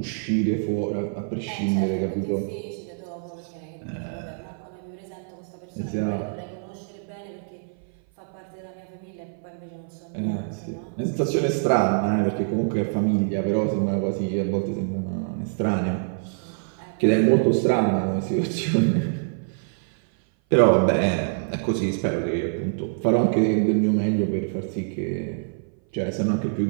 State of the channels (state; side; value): silent; left; 57 dB below the other